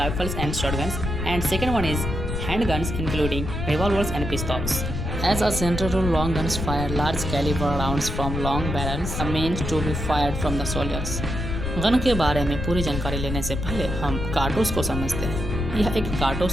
and shotguns, and second one is handguns including revolvers and pistols. As a general rule, long guns fire large caliber rounds from long barrels meant to be fired from the soldiers. Gun के बारे में पूरी जानकारी लेने से पहले हम कारतूस को समझते हैं। यह एक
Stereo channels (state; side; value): noise; left; rumble, 4 dB below the sound